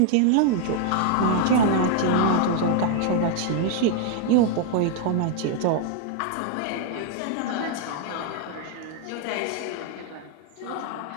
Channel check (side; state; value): both; different; correlation 0.00